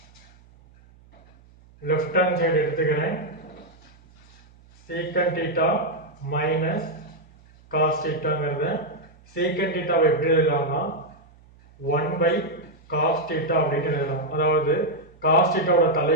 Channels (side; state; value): right; noise; hum, 27 dB below the sound